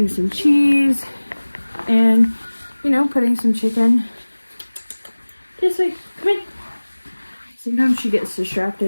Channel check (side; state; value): both; inverted; correlation -1.00